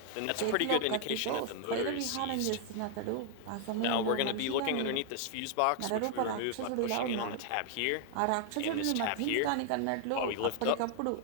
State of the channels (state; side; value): different; both; correlation 0.00